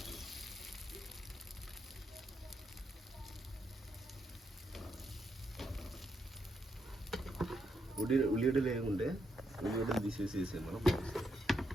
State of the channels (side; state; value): both; normal; correlation 0.80